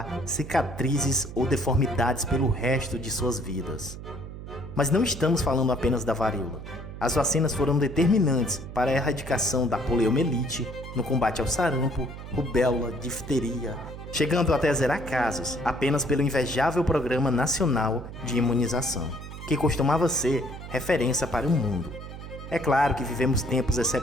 cicatrizes ou deformidades pelo resto de suas vidas. Mas não estamos falando apenas da varíola. As vacinas foram determinantes para a erradicação da poliomielite, no combate ao sarampo, rubéola, difteria, chegando até a zerar casos apenas pelo invejável Programa Nacional de Imunização, que costumava ser referência para o mundo. É claro que vivemos tempos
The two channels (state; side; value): noise; right; hum, 11 dB below the sound